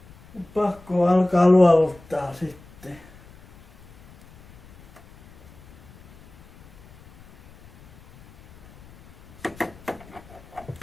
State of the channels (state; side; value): noise; left; rumble, 24 dB below the sound